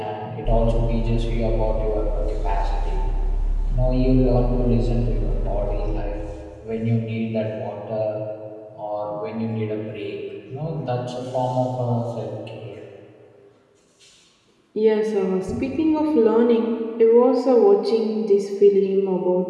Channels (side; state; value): both; identical; correlation 1.00